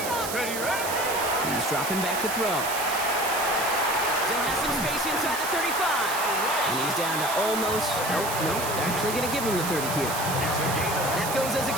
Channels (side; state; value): right; noise; hiss, 6 dB below the sound